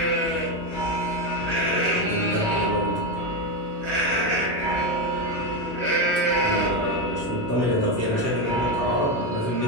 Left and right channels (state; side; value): normal; both; correlation 0.11